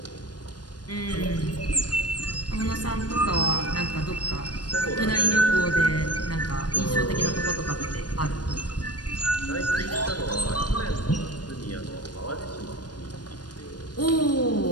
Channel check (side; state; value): right; late; 0.69 ms